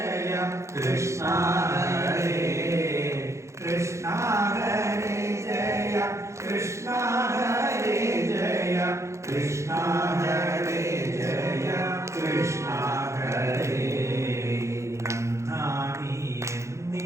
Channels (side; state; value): left; late; 0.14 ms